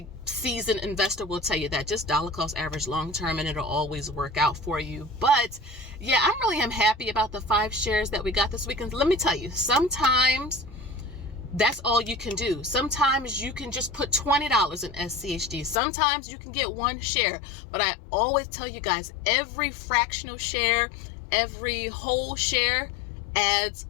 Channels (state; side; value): drops out; right; at 15.8 s